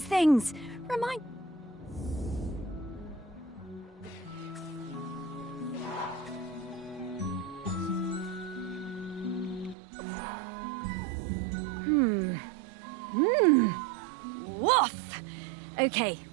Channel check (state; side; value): drops out; left; at 9.8 s